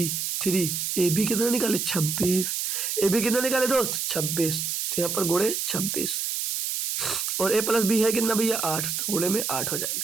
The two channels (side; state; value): right; noise; hiss, 1 dB below the sound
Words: 3ab कितना निकाले? 26। ए बी कितना निकाले दोस्त? 26। तो यहाँ पर गुणे 26 और ए प्लस बी है कितना भैया? 8, तो गुणे में 8 हो